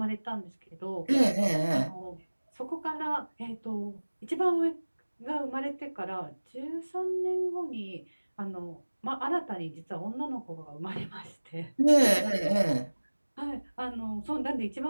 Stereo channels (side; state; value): both; inverted; correlation -1.00